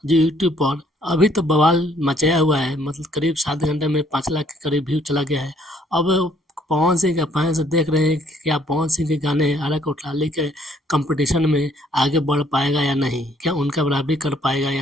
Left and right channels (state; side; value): normal; both; correlation 0.64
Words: जो यूट्यूब पर अभी तो बवाल मचाया हुआ है, मतलब करीब 7 घंटे में 5 लाख के करीब व्यू चला गया है। अब पवन सिंह के फैंस देख रहे हैं कि क्या पवन सिंह के गाने आरा कोठलाली के कंपटीशन में आगे बढ़ पाएगा या नहीं, क्या उनका बराबरी कर पाएगा